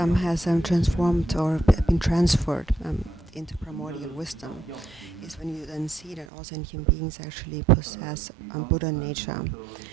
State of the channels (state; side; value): drops out; left; at 6.2 s